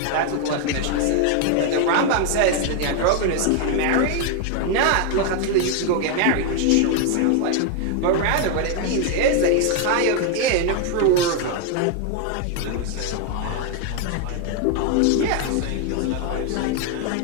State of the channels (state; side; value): different; both; correlation 0.00